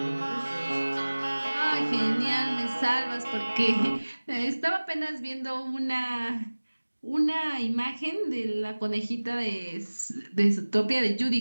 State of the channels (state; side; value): inverted; both; correlation -1.00